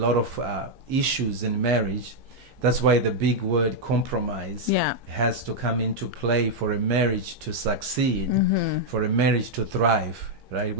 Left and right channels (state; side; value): late; left; 15 ms